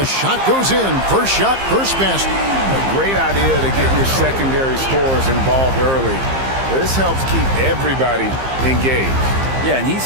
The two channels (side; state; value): left; late; 15 ms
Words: shot goes in. First shot, first basket. A great idea to get your secondary scorers involved early. This helps keep everybody engaged. Yeah, and he's